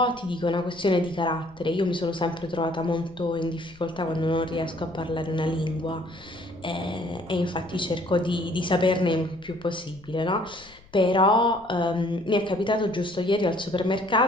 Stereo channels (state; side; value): noise; left; rumble, 25 dB below the sound